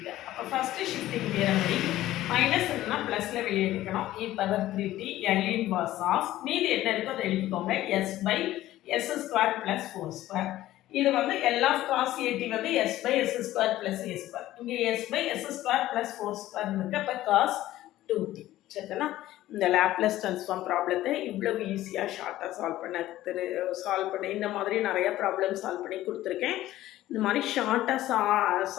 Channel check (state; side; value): quieter; right; 14.8 dB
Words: அப்போ ஃபஸ்ட்டு ஷிஃப்டிங் தியரம் படி மைனஸ் இருந்தால் ப்ளஸில் வெளியே எடுக்கணும். e power 3t L inverse of மீதி என்ன இருக்கோ அதை எழுதிக்கோங்க, s by s square plus 4 square. இது வந்து L of cos at வந்து s by s square plus a square. இங்கே s by s square plus 4 square இருக்கு. அப்போ cos 2t. சரிங்களா? இந்த லேப்லஸ் ட்ரான்ஸ்ஃபார்ம் ப்ராப்ளத்தை இவ்வளவு ஈஸியாக ஷார்ட்டாக சால்வ் பண்ண இந்த மாதிரி நிறையா ப்ராப்ளம் சால்வ் பண்ணி கொடுத்துருக்கேன். இந்த மாதிரி ஷார்ட்டாக